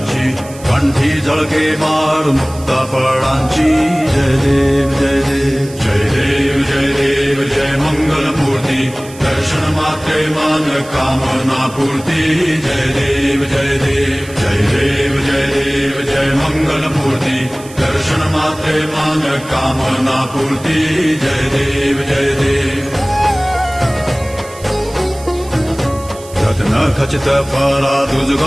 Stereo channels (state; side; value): noise; right; hiss, 19 dB below the sound